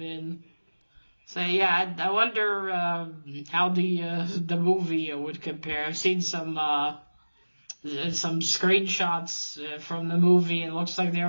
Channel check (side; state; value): both; inverted; correlation -1.00